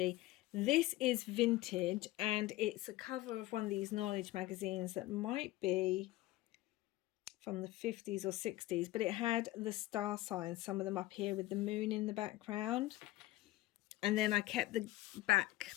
This is vintage, and it's a cover of one of these knowledge magazines that might be from the 50s or 60s, but it had the star signs, some of them up here with the moon in the background. And then I kept the back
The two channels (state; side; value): quieter; right; 17.2 dB